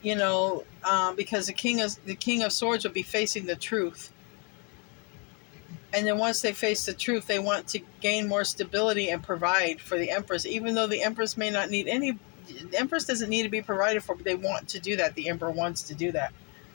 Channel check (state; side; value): quieter; right; 34.9 dB